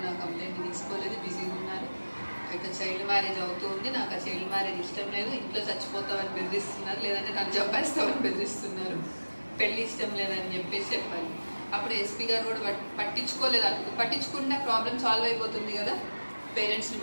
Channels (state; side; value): inverted; both; correlation -1.00